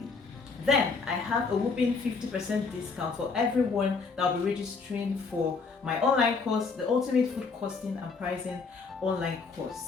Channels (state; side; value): quieter; right; 4.6 dB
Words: Then I have a whopping 50% discount for everyone that will be registering for my online course, the Ultimate Food Costing and Pricing online